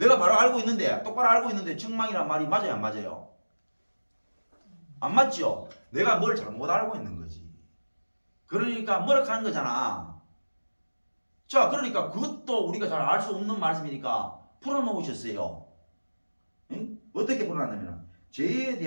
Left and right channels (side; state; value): both; inverted; correlation -1.00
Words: 바로 알고 있는데, 똑바로 알고 있는데 책망이라는 말이 맞아요, 안 맞아요? 안 맞죠? 내가 뭘 잘못 알고 있는 거지. 그러니까 뭐락하는 거잖아. 자, 그러니까 그것도 우리가 잘 알 수 없는 말씀이니까 풀어놓으셨어요. 응? 어떻게 풀어놨냐면 죄에